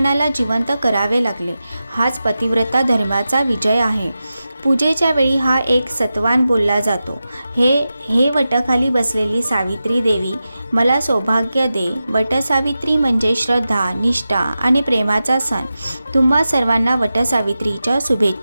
जिवंत करावे लागले. हाच पतिव्रता धर्माचा विजय आहे. पूजेच्या वेळी हा एक सत्वान बोलला जातो. हे वटाखाली बसलेली सावित्री देवी, मला सौभाग्य दे. वटसावित्री म्हणजे श्रद्धा, निष्ठा आणि प्रेमाचा सण. तुम्हा सर्वांना वटसावित्रीच्या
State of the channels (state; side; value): inverted; both; correlation -0.93